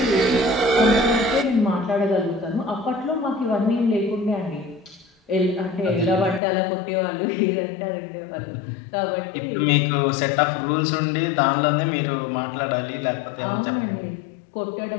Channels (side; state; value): right; drops out; at 6.4 s